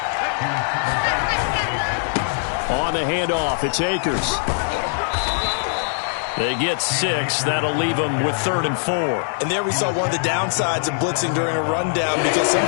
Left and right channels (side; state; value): right; silent; 57 dB below the other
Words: On the handoff, it's Akers. They get 6. That'll leave them with 3rd and 4. And there we saw one of the downsides of blitzing during a rundown, because